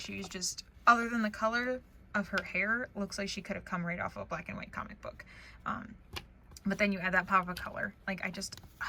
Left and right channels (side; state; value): both; identical; correlation 1.00